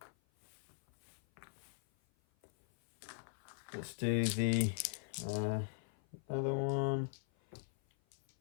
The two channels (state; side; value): silent; right; 51 dB below the other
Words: Let's do the other one.